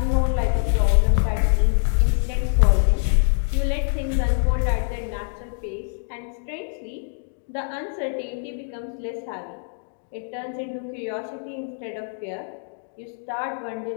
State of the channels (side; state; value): right; silent; digital silence